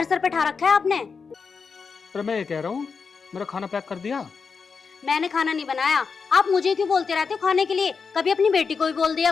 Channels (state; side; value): quieter; right; 5.3 dB